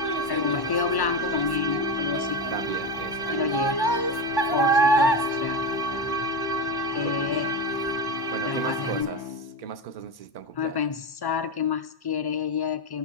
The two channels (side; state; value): right; late; 1.1 ms